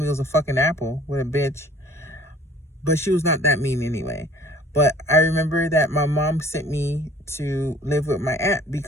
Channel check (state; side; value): normal; both; correlation 0.52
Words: it was a fucking apple. What a bitch. But she was not that mean anyway. But I remember that my mom sent me to live with my aunt